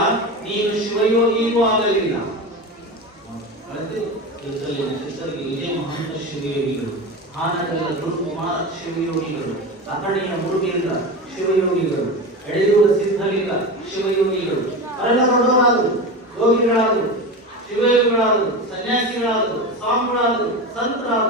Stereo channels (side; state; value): both; normal; correlation 0.25